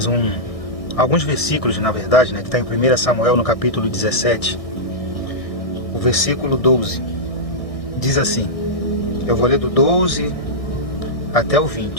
alguns versículos, na verdade, que está em 1 Samuel, no capítulo 17. O versículo 12 diz assim. Eu vou ler do 12 até o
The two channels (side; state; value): right; late; 1.6 ms